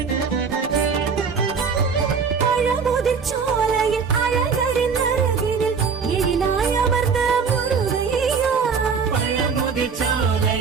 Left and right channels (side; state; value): left; quieter; 5.7 dB